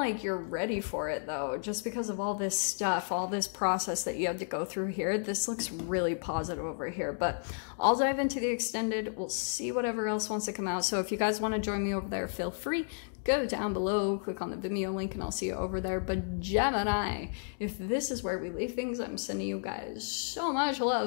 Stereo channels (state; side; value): silent; right; digital silence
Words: you're ready for it though, just because of all this stuff, all this process that you have to go through here. This looks really positive over here, but I'll dive into the extended. We'll see whatever else wants to come out. So if you guys want to join me over there, feel free. Go down below, click on the Vimeo link, and I'll see you over there. But Gemini, if this is where we leave things, I'm sending you guys so much